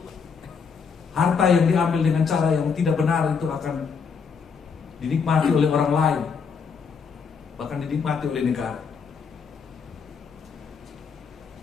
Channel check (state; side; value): quieter; right; 5.9 dB